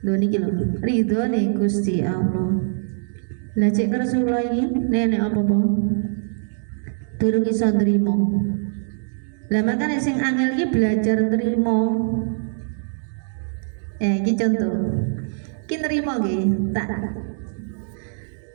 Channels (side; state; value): left; silent; digital silence